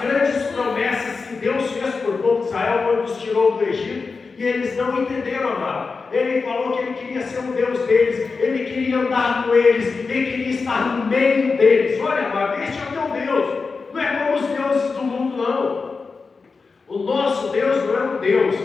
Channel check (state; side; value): quieter; right; 4.5 dB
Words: promessas que Deus fez por povo de Israel quando os tirou do Egito, e eles não entenderam, amado. Ele falou que ele queria ser o Deus deles, ele queria andar com eles, ele queria estar no meio deles. Olha, amado, este é o teu Deus. Não é como os deuses do mundo, não. O nosso Deus não é um Deus